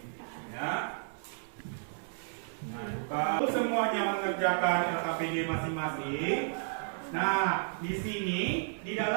Ya. Nah, buka. Semuanya mengerjakan LKPD masing-masing. Nah, di sini di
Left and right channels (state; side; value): silent; left; 56 dB below the other